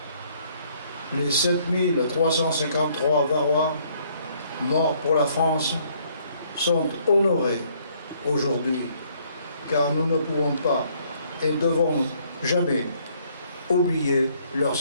les 7353 Varois morts pour la France sont honorés aujourd'hui, car nous ne pouvons pas et ne devons jamais oublier leur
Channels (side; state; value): both; inverted; correlation -0.65